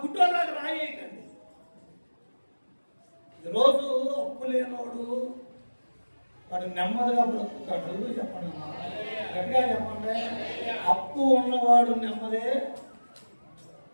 గుడ్డోళ్ళకి రాయేయకండి. ఈరోజు అప్పు లేనోడు వాడు నెమ్మదిగా బ్రతుకుతాడు. చెప్పండి, గట్టిగా చెప్పండి. అప్పు ఉన్నవాడు నెమ్మదే,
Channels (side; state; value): both; inverted; correlation -1.00